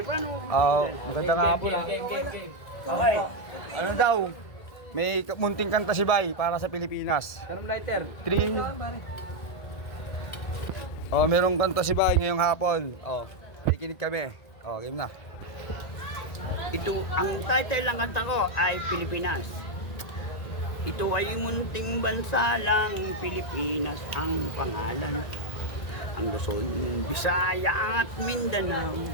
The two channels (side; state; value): right; late; 1.9 ms